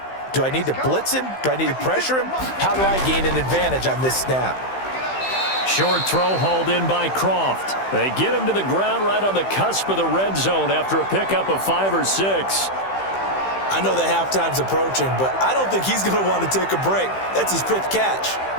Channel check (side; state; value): right; late; 15 ms